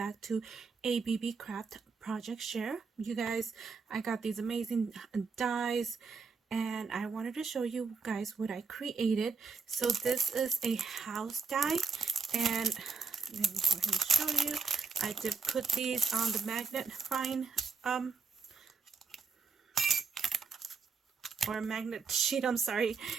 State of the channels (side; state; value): left; quieter; 5.0 dB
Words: to a Beebeecraft Project Share. You guys, I got these amazing dies and I wanted to show you guys what I created. So this is a house die and let me go ahead and show you. I did put these on the magnifying or magnet sheet, I'm sorry,